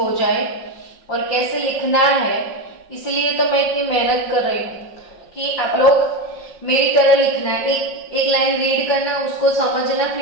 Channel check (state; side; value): late; right; 5.5 ms